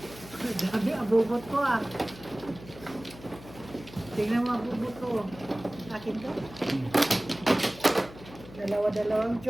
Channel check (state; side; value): noise; left; hum, 18 dB below the sound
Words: Dami, abubot ko ah. Tingnan mo abubot ko. Akin to. Dalawa-dalawang